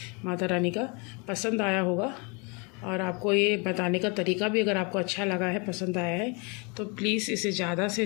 Mata Rani का पसंद आया होगा। और आपको ये बताने का तरीका भी अगर आपको अच्छा लगा है, पसंद आया है, तो प्लीज़ इसे ज़्यादा से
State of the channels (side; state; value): right; quieter; 31.5 dB